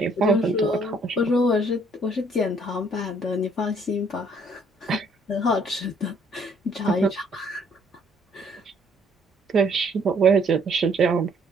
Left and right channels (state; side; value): normal; both; correlation 0.63